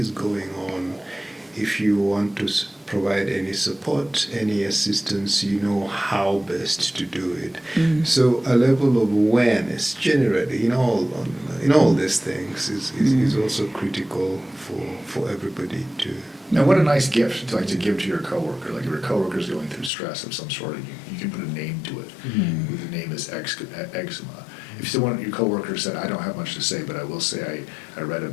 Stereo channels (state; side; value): drops out; right; at 19.9 s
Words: going on. If you want to provide any support, any assistance, you know how best to do it. Mm. So a level of awareness generally in all these things is also critical for everybody to. Now, what a nice gift to give to your coworker. Like, if your coworker is going through stress of some sort, and you can put a name to it. Mm-hmm. The name is eczema. If your coworker said, "I don't have much to say, but I will say I read